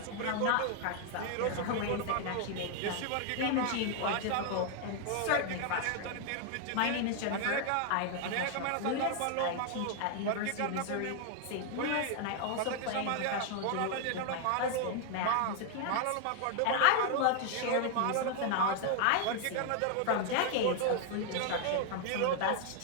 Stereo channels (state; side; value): different; both; correlation 0.00